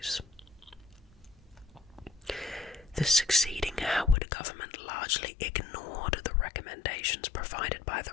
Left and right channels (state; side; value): drops out; right; at 4.2 s